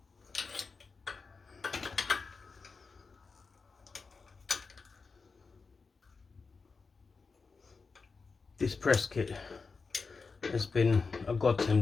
This press kit has been a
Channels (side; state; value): right; quieter; 4.6 dB